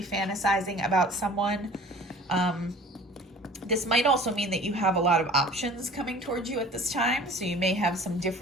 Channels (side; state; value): both; normal; correlation 0.45